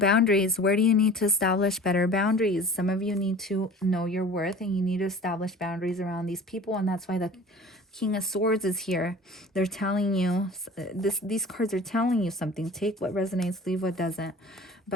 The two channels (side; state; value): both; normal; correlation 0.42